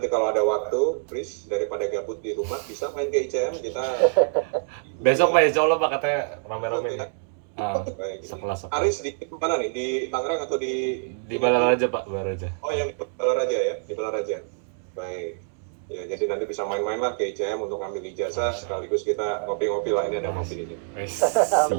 kalau ada waktu, Pris, daripada gabut di rumah, bisa main ke ICM, kita... Besok Pak, insya Allah Pak, katanya rame-rame nih. Baik. Sekelas. Aris di mana nih? Di Tangerang atau di... Di Balaraja Pak, Balaraja. Oh yang di Balaraja ya? Di Balaraja. Baik. Ya, jadi nanti bisa main-main lah ke ICM untuk ambil ijazah, sekaligus kita ngopi-ngopi lah, ini ada kopi ini.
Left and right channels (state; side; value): silent; left; 61 dB below the other